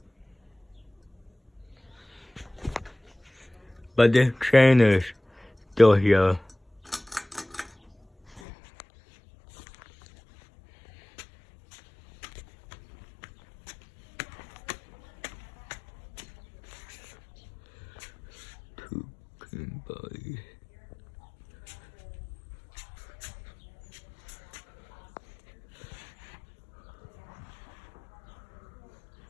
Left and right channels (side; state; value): right; drops out; at 8.4 s